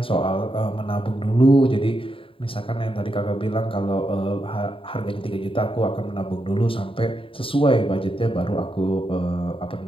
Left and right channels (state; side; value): late; right; 0.26 ms